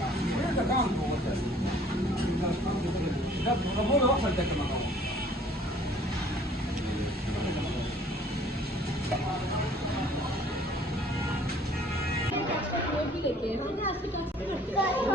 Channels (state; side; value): normal; both; correlation 0.55